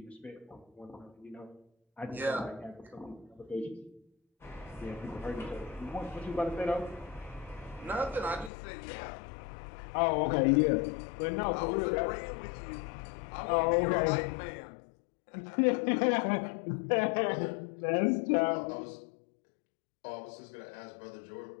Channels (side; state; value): right; drops out; at 8.5 s